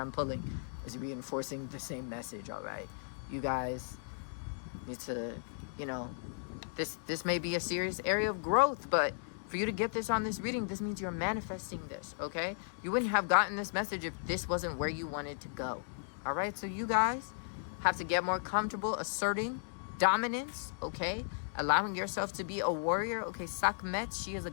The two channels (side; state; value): right; silent; digital silence